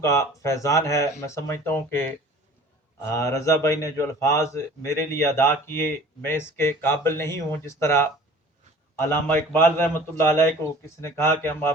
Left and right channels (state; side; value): normal; both; correlation 0.46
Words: فیضان ہے۔ میں سمجھتا ہوں کہ رضا بھائی نے جو الفاظ میرے لیے ادا کیے، میں اس کے قابل نہیں ہوں۔ جس طرح علامہ اقبال رحمۃ اللہ علیہ کو کسی نے کہا کہ ہم